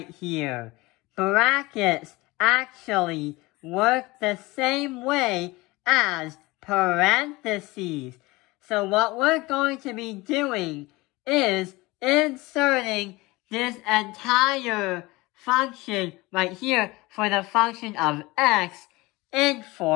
here. Brackets actually work the same way as parentheses. So what we're going to be doing is inserting this entire function right here for the function of x in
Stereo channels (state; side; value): quieter; right; 21.9 dB